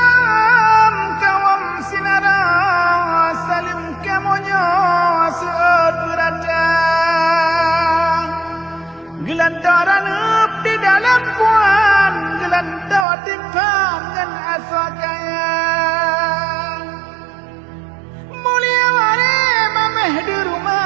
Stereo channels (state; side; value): drops out; left; at 13.1 s